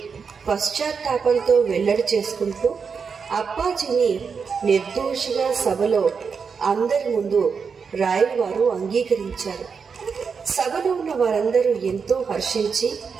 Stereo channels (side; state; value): left; quieter; 5.8 dB